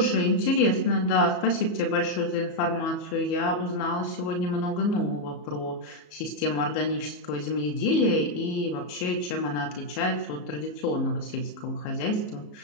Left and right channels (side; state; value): right; late; 34 ms